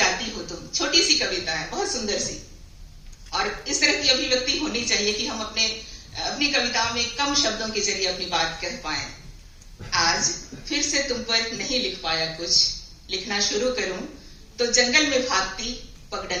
हो तुम, छोटी सी कविता है, बहुत सुंदर सी। और इस तरह की अभिव्यक्ति होनी चाहिए कि हम अपने अपनी कविताओं में कम शब्दों के जरिए अपनी बात कह पाए। आज फिर से तुम पर नहीं लिख पाया कुछ, लिखना शुरू करूं तो जंगल में भागती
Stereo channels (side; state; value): both; identical; correlation 1.00